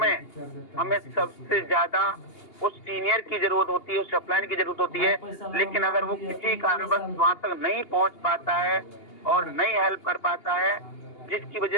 हमें सबसे ज्यादा उस सीनियर की जरूरत होती है, उस अपलाइन की जरूरत होती है। लेकिन अगर वो किसी कारणवश वहां तक नहीं पहुंच पाता है और नहीं हेल्प कर पाता है, जिसकी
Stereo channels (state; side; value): late; right; 2.8 ms